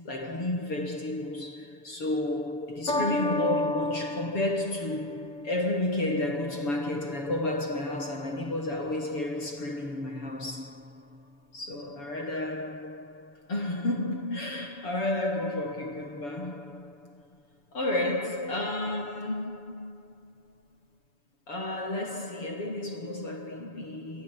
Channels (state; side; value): late; right; 7.0 ms